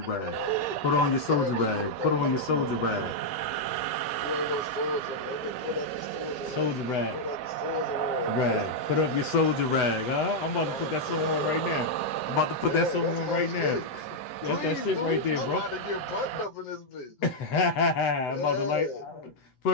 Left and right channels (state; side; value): late; right; 7.9 ms